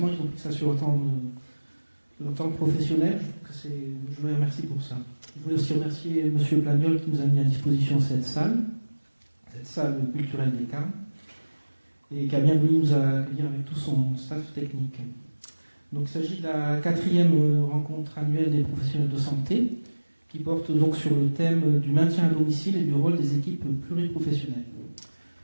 ils ont pris ça sur leur temps professionnel. Je vous remercie pour ça. Je voulais aussi remercier M. Plagnol qui nous a mis à disposition cette salle culturelle des Carmes, et qui a bien voulu nous accueillir avec tout son staff technique. Donc, il s'agit de la 4e rencontre annuelle des professionnels de santé, qui porte donc sur le thème du maintien à domicile et du rôle des équipes pluriprofessionnelles.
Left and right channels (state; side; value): inverted; both; correlation -1.00